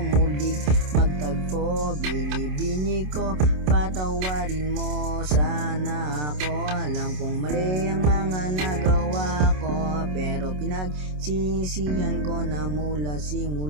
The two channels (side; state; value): left; late; 27 ms